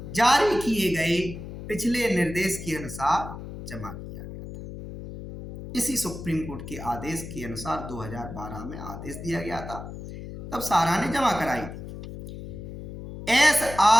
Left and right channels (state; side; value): noise; left; hum, 11 dB below the sound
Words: जारी किए गए पिछले निर्देश के अनुसार जमा किया गया था। इसी सुप्रीम कोर्ट के आदेश के अनुसार 2012 में आदेश दिया गया था, तब सहारा ने जमा कराई थी।